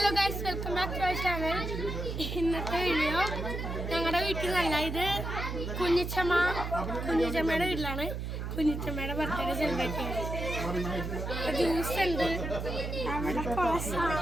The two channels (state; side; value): noise; right; hum, 4 dB below the sound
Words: guys, welcome back to our channel. ഇന്നത്തെ video ഞങ്ങളുടെ വീട്ടിൽ നല്ല ഇത് കുഞ്ഞിച്ചമ്മയുടെ വീട്ടിലാണ്. കുഞ്ഞിച്ചമ്മയുടെ ബർത്ത്ഡേ സെലിബ്രേറ്റ് ചെയ്യുന്നത്. ജ്യൂസ് ഉണ്ട്, അവിടെ കുറേ